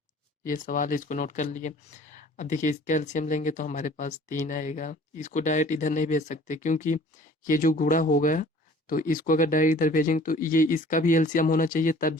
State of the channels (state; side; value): normal; both; correlation 0.50